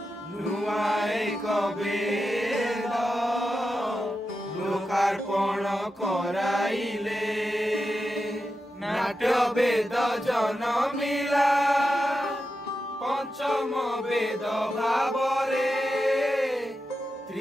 नुआ एक वेद लोकार्पण कराइले नाट्य वेद जन्मिला पंचम वेद भावरे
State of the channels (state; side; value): normal; both; correlation 0.89